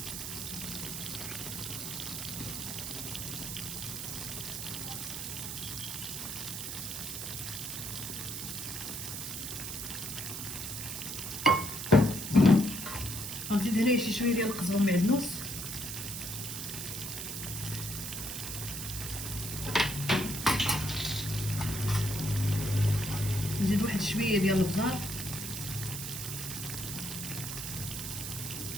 غنزيد هنايا شي شويه ديال القزبر معدنوس، نزيد واحد شويه ديال البزار،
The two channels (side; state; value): right; noise; hiss, 5 dB below the sound